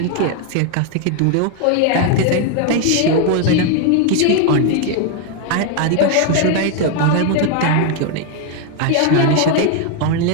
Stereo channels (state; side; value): different; both; correlation 0.01